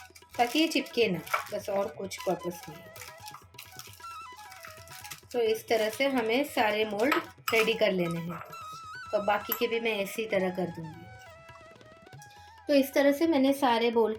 ताकि ये चिपके ना, बस और कुछ पर्पस नहीं। तो इस तरह से हमें सारे मोल्ड रेडी कर लेने हैं। तो बाकी के भी मैं इसी तरह कर दूंगी। तो इस तरह से मैंने सारे बोल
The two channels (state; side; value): identical; both; correlation 1.00